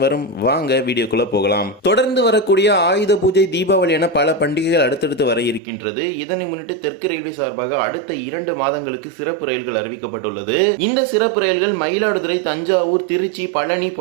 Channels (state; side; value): drops out; left; at 5.6 s